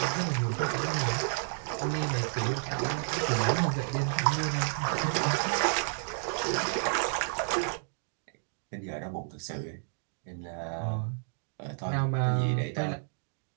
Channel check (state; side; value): silent; left; digital silence